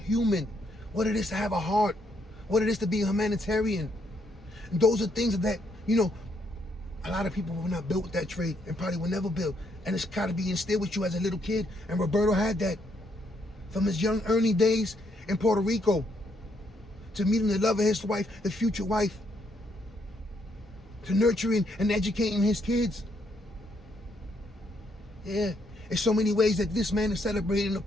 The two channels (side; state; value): both; normal; correlation 0.74